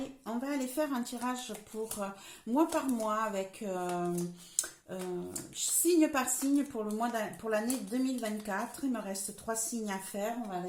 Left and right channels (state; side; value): identical; both; correlation 1.00